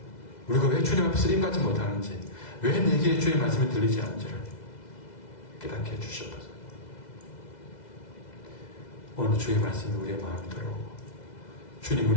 우리가 왜 주님 앞에 쓰임받지 못하는지, 왜 내게 주의 말씀이 들리지 않는지를 깨닫게 해주셔서 오늘 주의 말씀이 우리의 마음에 들어오고 주님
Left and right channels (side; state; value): right; late; 2.0 ms